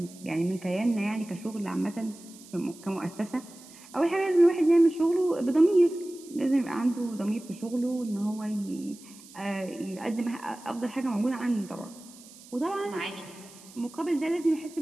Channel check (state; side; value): noise; right; hiss, 21 dB below the sound